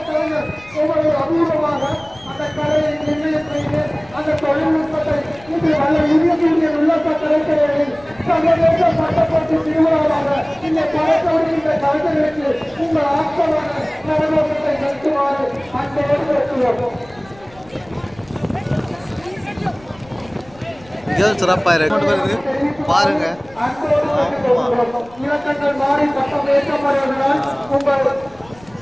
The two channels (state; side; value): noise; left; rumble, 25 dB below the sound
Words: கலைஞர் ஒவ்வொரு அபூர்வமாக அந்த கலையை நிர்ணயம் செய்து அந்த தொழில்நுட்பத்தை இது வல்ல யூனியன் உல்லாச கலைஞர்களின் சர்வதேச பட்டப்பட்டு திருவிழாவாக இந்த படத்தோடு கலைஞர்களுக்கு உங்கள் ஆக்கமான நலநோக்கத்தை நடத்துமாறு அன்போடு கேட்டுள்ளோம். சிறப்பாக இருக்கு பாருங்க. இலக்கங்கள் மாறி பட்டம் ஏற்றப்படுவதனால் உங்கள்